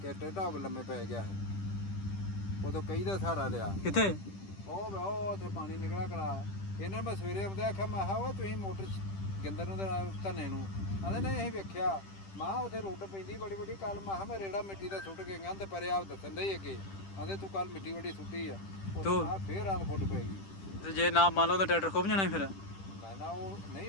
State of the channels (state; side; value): late; right; 10 ms